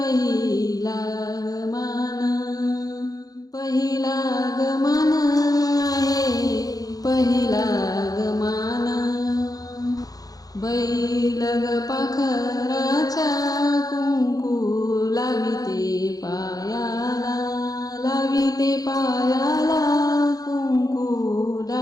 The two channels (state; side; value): late; right; 0.18 ms